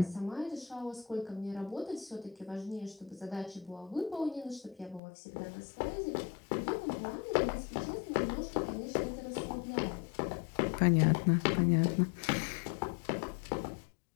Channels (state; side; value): drops out; right; at 5.0 s